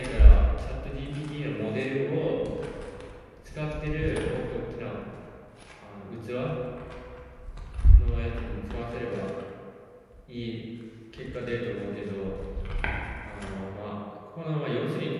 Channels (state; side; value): identical; both; correlation 1.00